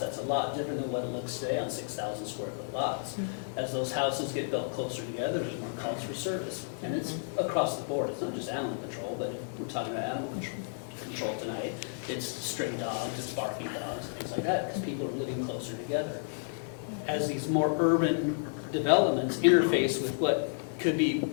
a lot different than what it looks today on 6,000 square foot lots. As those houses get built closer together, there's more calls for service. And it's across the board. It's not just animal control, but if we're talking about animal control tonight. It's stray dogs, it's barking dogs, things like that, because people are living closer together. As these more urban developments interface with what could be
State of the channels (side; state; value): right; silent; digital silence